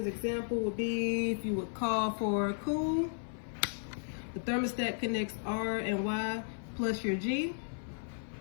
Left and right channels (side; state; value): right; silent; 55 dB below the other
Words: example would be if you would call for cool, the thermostat connects R and Y plus your G.